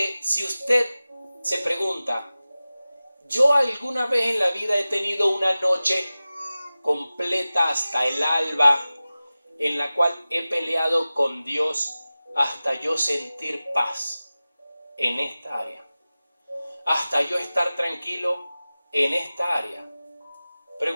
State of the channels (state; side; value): inverted; both; correlation -0.96